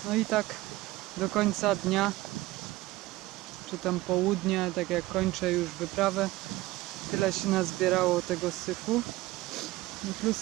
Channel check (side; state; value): left; quieter; 18.5 dB